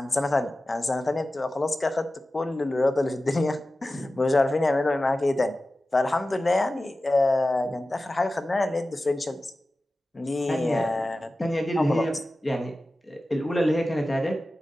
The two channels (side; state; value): both; normal; correlation 0.95